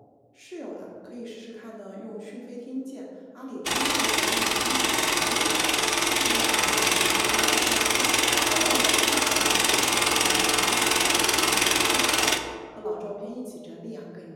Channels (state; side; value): identical; both; correlation 1.00